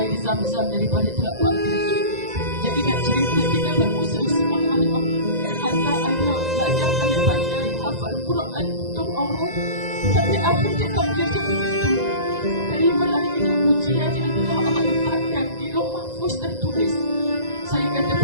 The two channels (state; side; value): late; left; 1.9 ms